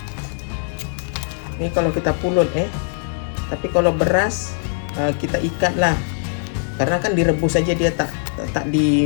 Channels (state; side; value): silent; right; 65 dB below the other